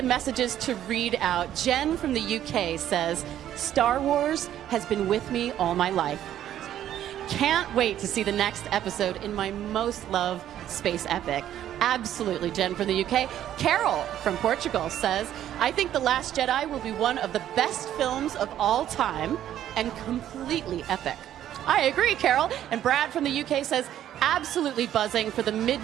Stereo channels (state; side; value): quieter; left; 11.4 dB